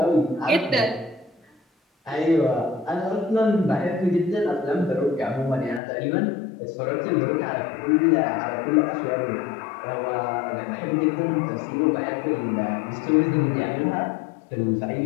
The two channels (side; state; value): right; drops out; at 5.8 s